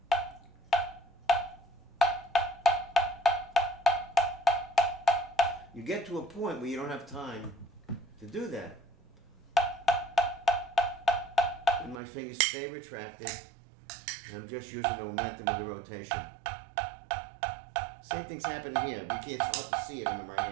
You get to a point where you don't have time to do that. And my fingers stay retracted, and I'm just using the momentum of the rotation. Same thing's happening here. It's hard to see it in the right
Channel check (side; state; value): left; drops out; at 12.0 s